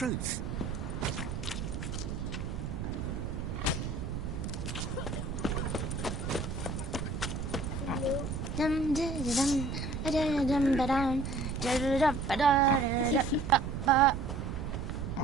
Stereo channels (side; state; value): right; noise; rumble, 4 dB below the sound